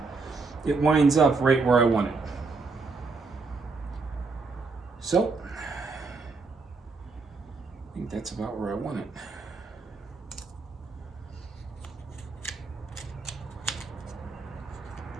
it winds up right where I want it. So, I think that's about where I want it.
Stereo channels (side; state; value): left; quieter; 4.1 dB